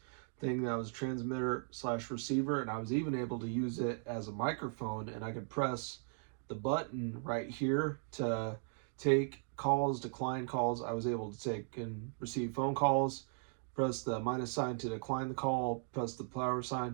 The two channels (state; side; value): silent; left; 53 dB below the other